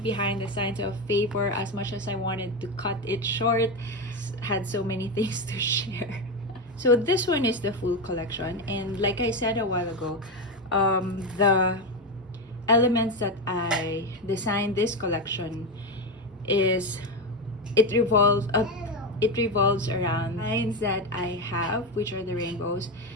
the Signs of Favor. As much as I wanted to cut it short, had so many things to share. So this one is the full collection, and like I said a while ago, the elements that I designed this collection it revolves around lines that I have, which are the rainbows.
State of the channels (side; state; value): both; normal; correlation 0.13